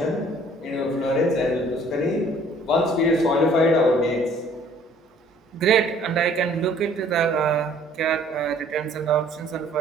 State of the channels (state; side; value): normal; both; correlation 0.56